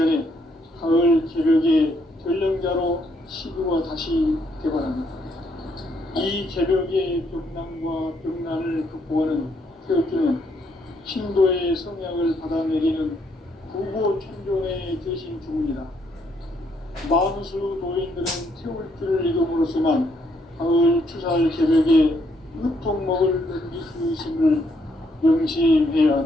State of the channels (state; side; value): normal; both; correlation 0.72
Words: 가을 개벽의 전령자로 시드가 다시 개발합니다. 이 개벽의 병난과 병난을 극복하는 태극기는 신도의 성향을 받아내리는 구보천존의 대신 주문이다. 만수 노인들은 태울기를 이름으로서만 가을 추살 개벽의 으통목을 넘길 수 있음을 명심해야